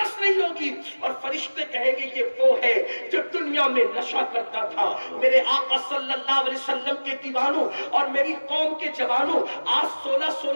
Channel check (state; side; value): inverted; both; correlation -1.00